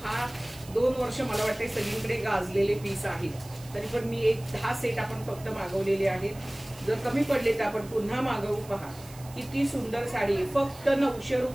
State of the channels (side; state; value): right; noise; hiss, 20 dB below the sound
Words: हा 2 वर्ष मला वाटते सगळीकडे गाजलेले पीस आहेत। तरी पण मी एक 10 सेट आपण फक्त मागवलेले आहेत। जर कमी पडले तर आपण पुन्हा मागवू। पहा किती सुंदर साडी आहे। फक्त 900